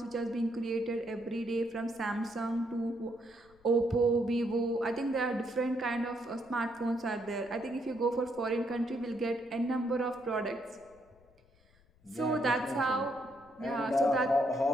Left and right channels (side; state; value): left; noise; rumble, 30 dB below the sound